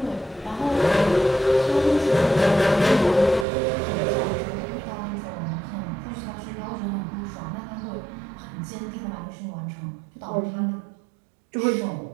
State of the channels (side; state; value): left; drops out; at 3.5 s